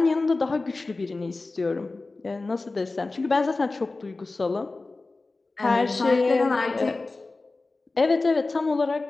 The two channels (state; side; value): quieter; right; 3.4 dB